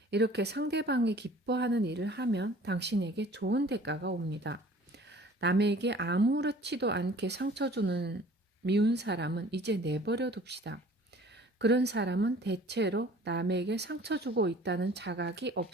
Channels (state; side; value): normal; both; correlation 0.50